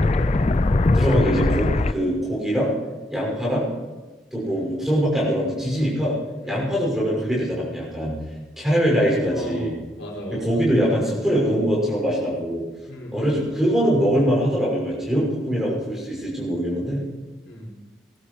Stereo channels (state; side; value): normal; both; correlation 0.74